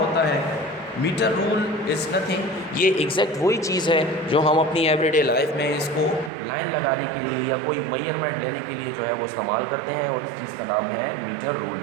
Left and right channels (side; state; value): left; drops out; at 6.3 s